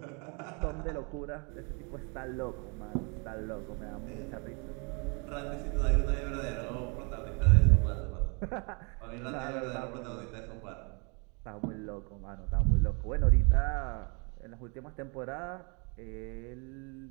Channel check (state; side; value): quieter; left; 34.0 dB